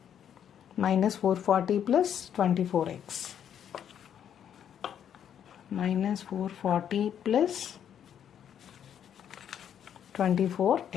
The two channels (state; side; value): quieter; right; 9.2 dB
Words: minus 440 plus 24x. Minus 440 plus